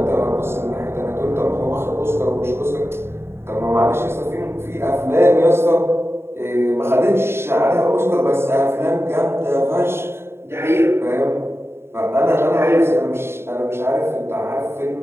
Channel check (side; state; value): left; late; 0.12 ms